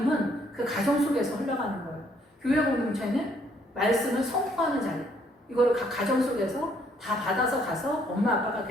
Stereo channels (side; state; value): both; normal; correlation 0.67